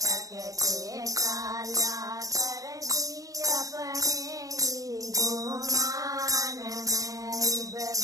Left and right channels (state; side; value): late; left; 0.17 ms